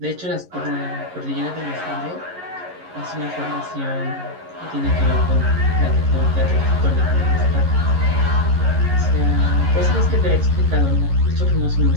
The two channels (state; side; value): late; left; 11 ms